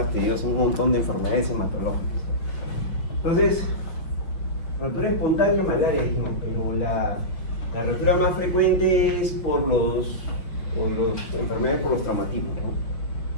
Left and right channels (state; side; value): late; right; 5.8 ms